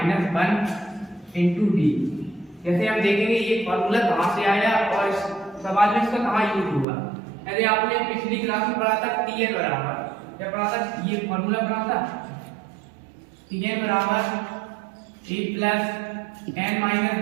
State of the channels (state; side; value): drops out; left; at 6.9 s